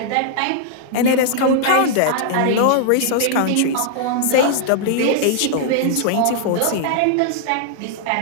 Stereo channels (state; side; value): different; both; correlation -0.01